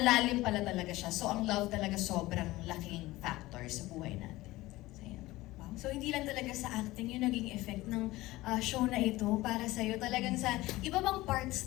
pala talaga siya. So ang love talaga sobrang laking factor sa buhay natin. So, yun. Wow. So hindi lang talaga sa acting yung naging effect ng show na ito para sa'yo. Talagang sa iba bang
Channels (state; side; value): quieter; right; 18.5 dB